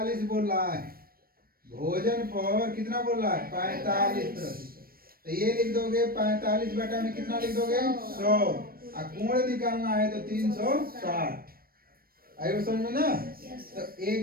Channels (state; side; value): late; left; 0.43 ms